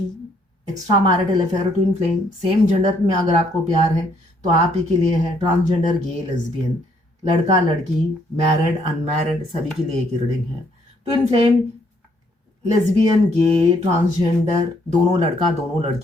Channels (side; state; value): both; normal; correlation 0.68